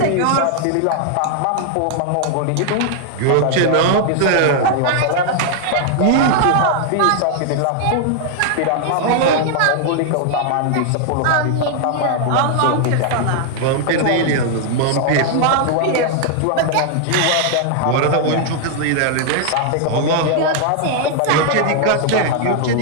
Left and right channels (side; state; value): both; different; correlation 0.00